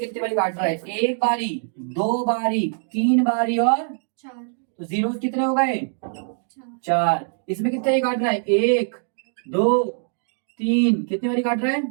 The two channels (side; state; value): left; silent; 60 dB below the other